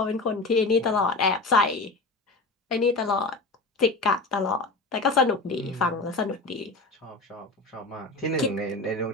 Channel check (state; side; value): quieter; right; 3.4 dB